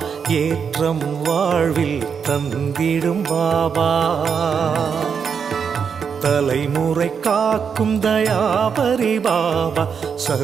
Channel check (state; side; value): quieter; left; 6.6 dB